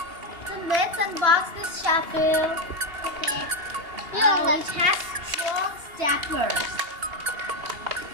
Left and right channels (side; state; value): left; late; 2.8 ms